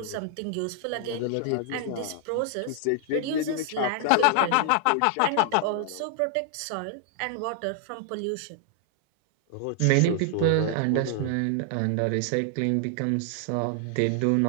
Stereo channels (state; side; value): different; both; correlation -0.01